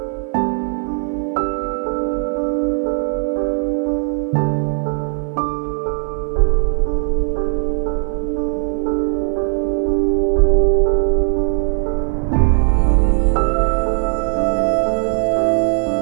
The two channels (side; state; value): left; silent; 55 dB below the other